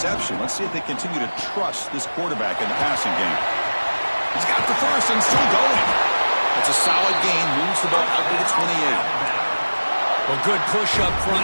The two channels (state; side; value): inverted; both; correlation -1.00